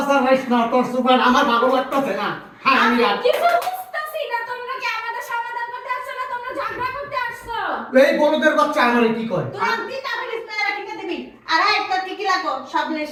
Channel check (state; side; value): identical; both; correlation 1.00